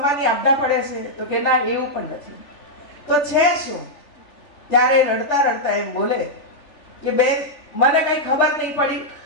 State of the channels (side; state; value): right; late; 3.4 ms